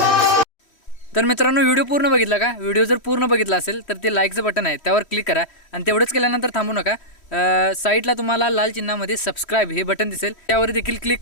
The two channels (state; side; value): late; right; 3.1 ms